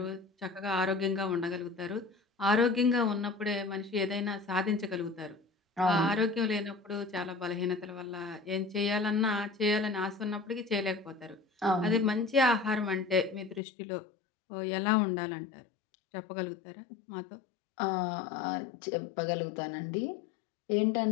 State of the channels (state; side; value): drops out; right; at 13.6 s